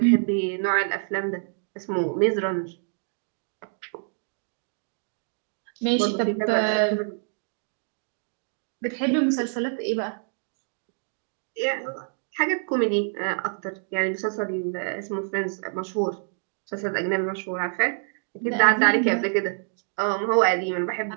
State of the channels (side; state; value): left; silent; 60 dB below the other